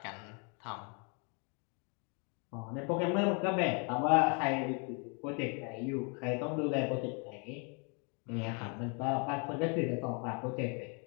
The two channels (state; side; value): quieter; right; 36.2 dB